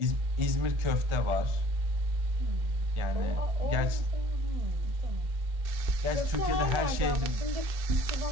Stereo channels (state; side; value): late; left; 1.4 ms